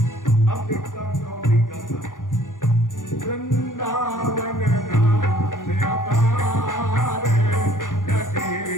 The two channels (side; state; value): right; late; 0.88 ms